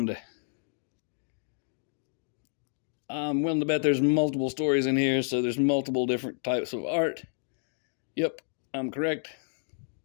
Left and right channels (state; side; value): silent; right; digital silence